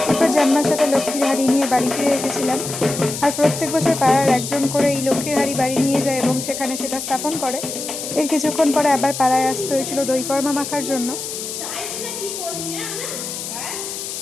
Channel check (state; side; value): noise; left; hiss, 7 dB below the sound